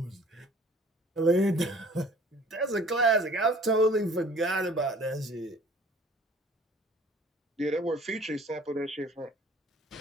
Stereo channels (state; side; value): normal; both; correlation 0.51